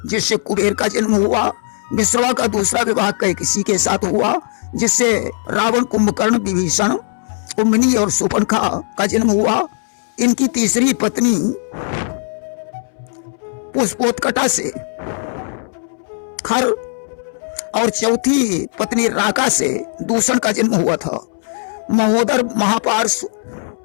जिससे कुबेर का जन्म हुआ। विश्रवा का दूसरा विवाह कैकसी के साथ हुआ, जिससे रावण, कुंभकर्ण, विभीषण, कुंभिनी और शूर्पणखा का जन्म हुआ। इनकी तीसरी पत्नी पुष्पोत्कटा से खर और चौथी पत्नी राका से दूषण का जन्म हुआ था। महोदर, महापार्श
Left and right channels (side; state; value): right; silent; 67 dB below the other